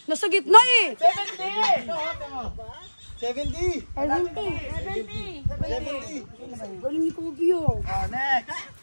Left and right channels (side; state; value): both; inverted; correlation -1.00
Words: Nasa gitna eh. 70. 70. Galing ni Kobe oh. Next.